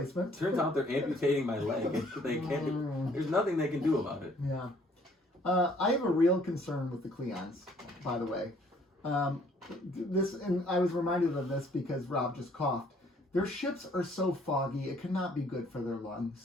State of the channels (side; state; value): both; normal; correlation 0.61